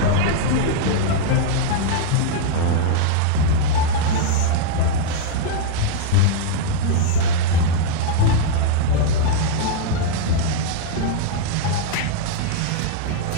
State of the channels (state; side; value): different; both; correlation -0.01